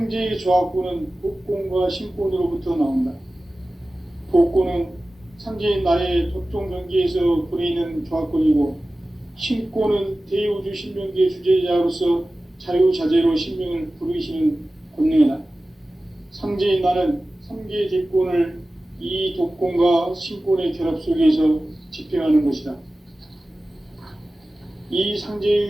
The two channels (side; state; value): both; normal; correlation 0.96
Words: 조화권은 복권과 신권으로부터 나온다. 복권은 상제인 나의 도통 경계에서 부리는 조화권이고, 신권은 대우주 신명기의 주제자로서 자유자재로 신명을 부르시는 권능이다. 상제인 나는 3개의 대권을 이 독권과 신권의 결합 속에서 집행하는 것이다. 이